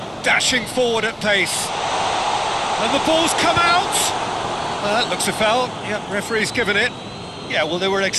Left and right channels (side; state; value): both; identical; correlation 1.00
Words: Dashing forward at pace. And the ball's come out! That looks a foul. Yep, referee's given it. Yeah, well, they were